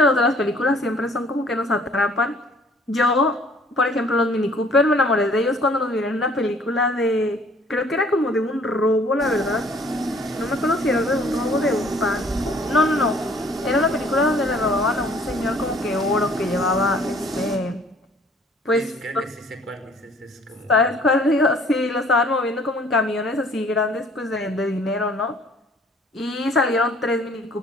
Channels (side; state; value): both; normal; correlation 0.57